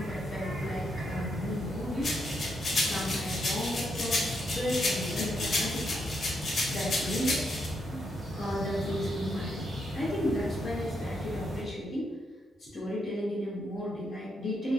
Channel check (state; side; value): normal; both; correlation 0.79